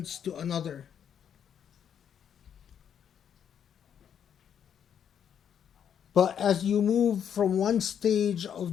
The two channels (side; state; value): right; quieter; 8.6 dB